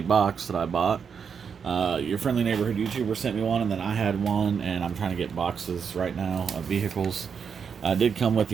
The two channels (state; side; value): quieter; left; 6.6 dB